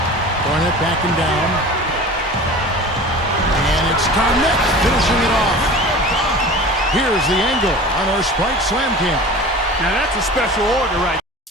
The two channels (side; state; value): both; normal; correlation 0.37